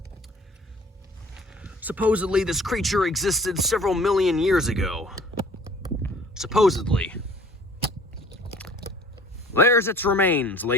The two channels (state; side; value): normal; both; correlation 0.50